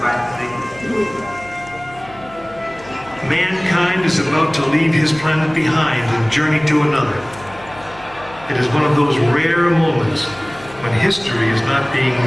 Mankind is about to leave his planet behind and journey to another. It is one of those rare moments when history is not being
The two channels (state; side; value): noise; left; hum, 21 dB below the sound